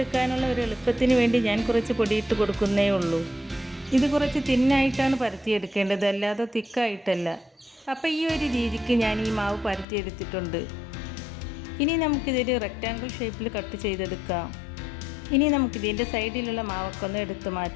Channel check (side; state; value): right; drops out; at 9.9 s